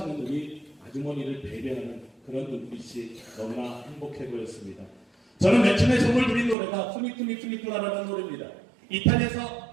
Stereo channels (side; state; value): left; drops out; at 6.6 s